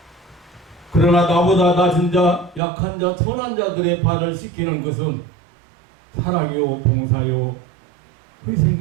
그러나 나보다 낮은 자, 약한 자, 선한 자들의 발을 씻기는 것은 사랑이요 봉사요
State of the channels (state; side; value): drops out; left; at 2.6 s